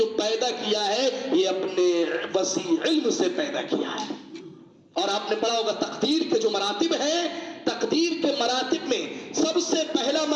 پیدا کیا ہے یہ اپنے وسیع علم سے پیدا کیا ہے. اور آپ نے پڑھا ہوگا تقدیر کے جو مراتب ہیں، تقدیر کے مراتب میں سب سے پہلا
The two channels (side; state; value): both; identical; correlation 1.00